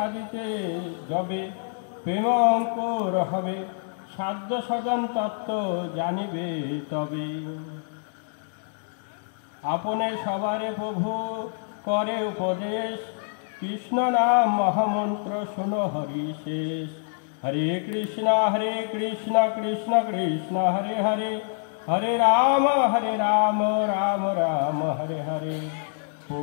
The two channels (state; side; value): silent; right; digital silence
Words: যবে প্রেম অঙ্কুর হবে, সাধ্য সদন তত্ত্ব জানিবে তবে। আপনে সবারে প্রভু করে উপদেশ, কৃষ্ণ নাম মহামন্ত্র শুনো হরি শেষ। हरे कृष्णा कृष्ण कृष्ण हरे हरे, हरे राम राम राम हरे हरे।